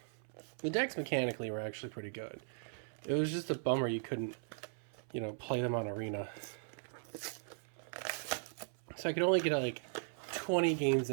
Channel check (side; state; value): left; silent; 52 dB below the other